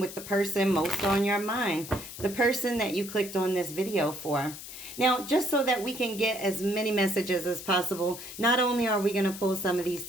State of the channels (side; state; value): left; noise; hiss, 12 dB below the sound